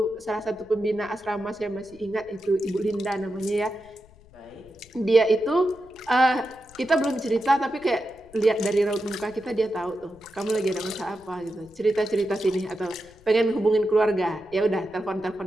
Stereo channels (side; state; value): left; noise; rumble, 26 dB below the sound